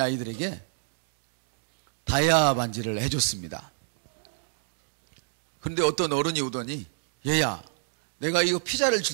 아이들에게 다이아 반지를 해줬습니다. 그런데 어떤 어른이 오더니, 얘야, 내가 이거 피자를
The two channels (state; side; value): silent; left; digital silence